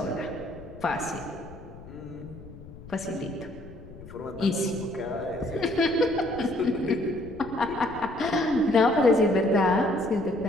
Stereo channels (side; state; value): left; noise; rumble, 17 dB below the sound